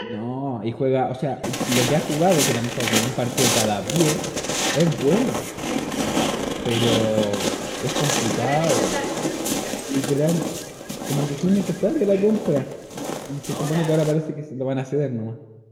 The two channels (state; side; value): identical; both; correlation 1.00